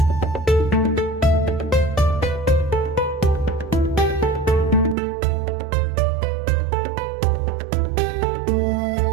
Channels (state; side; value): drops out; left; at 5.0 s